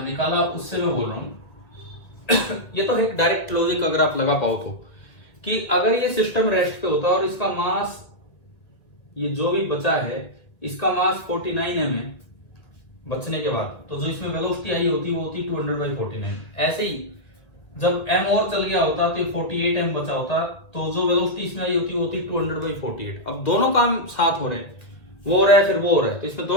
उससे मैं बोल रहा हूं ये तो एक डायरेक्ट लॉजिक अगर आप लगा पाओ तो, कि अगर ये सिस्टम रेस्ट पे होता और इसका मास, ये जो भी बचा है इसका मास 49m है बचने के बाद, तो जो इसमें वेलोसिटी आई होती वो होती 200 बाई 49। ऐसे ही जब m और चल गया होता तो 48m बचा होता, तो जो वेलोसिटी इसमें आई होती वो होती 200 बाई 48। अब दोनों काम साथ हो रहे हैं, वो हो रहा है फिर वो हो रहा है, तो इसमें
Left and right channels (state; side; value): late; right; 1.9 ms